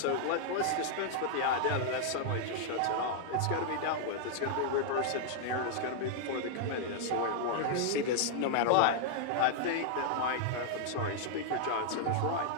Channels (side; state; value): both; different; correlation -0.01